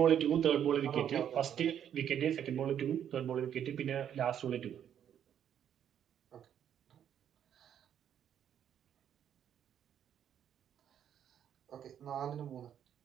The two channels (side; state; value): left; quieter; 9.4 dB